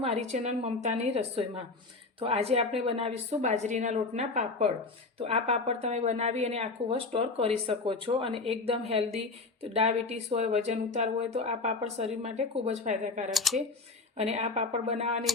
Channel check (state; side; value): quieter; right; 3.8 dB